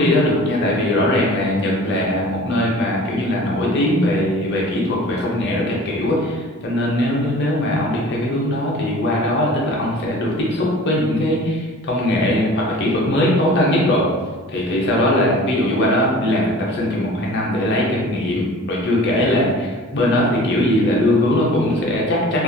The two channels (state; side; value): normal; both; correlation 0.44